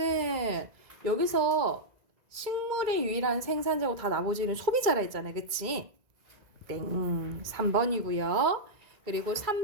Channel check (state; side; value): late; left; 1.9 ms